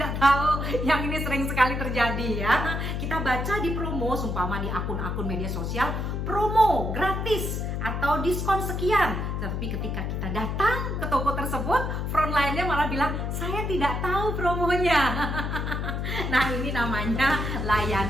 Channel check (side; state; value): left; noise; hum, 2 dB below the sound